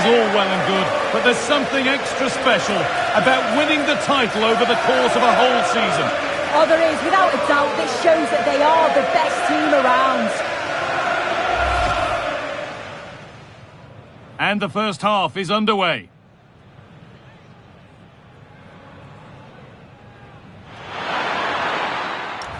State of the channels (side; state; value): both; identical; correlation 1.00